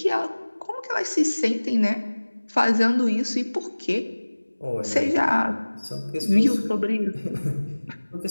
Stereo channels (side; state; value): both; inverted; correlation -1.00